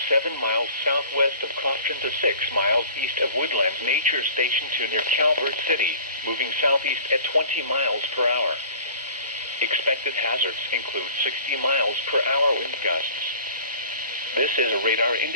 7 miles southwest of Crofton to 6 miles east of Woodlands Nature Station to near Calvert City, moving southeast at 20 miles per hour. Expected hazards include 60 miles per hour wind gusts. This is a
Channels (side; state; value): both; inverted; correlation -0.46